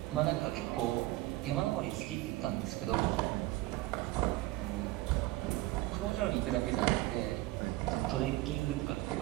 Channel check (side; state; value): left; quieter; 18.4 dB